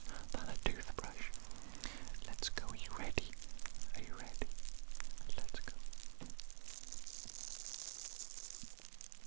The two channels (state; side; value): silent; left; digital silence